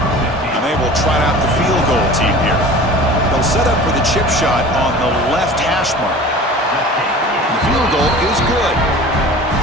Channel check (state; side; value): normal; both; correlation 0.40